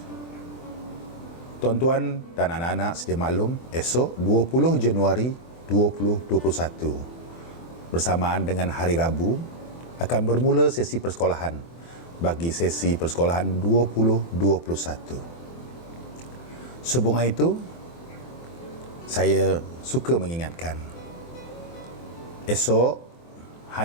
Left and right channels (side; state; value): right; late; 24 ms